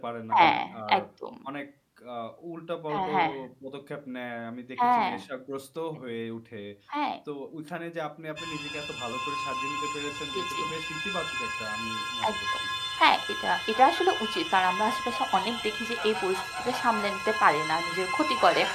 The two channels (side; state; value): both; identical; correlation 1.00